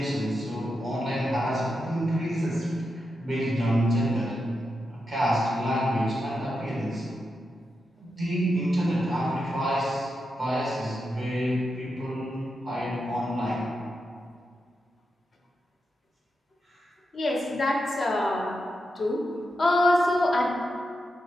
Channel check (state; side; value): normal; both; correlation 0.87